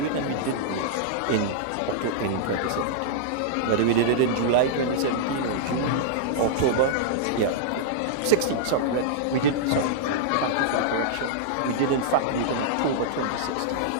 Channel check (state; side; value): different; both; correlation -0.02